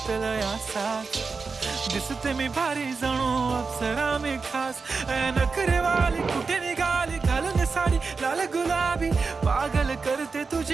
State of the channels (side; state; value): left; quieter; 4.6 dB